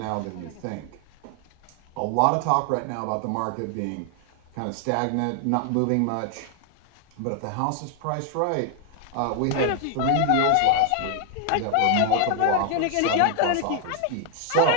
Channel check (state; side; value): different; both; correlation 0.00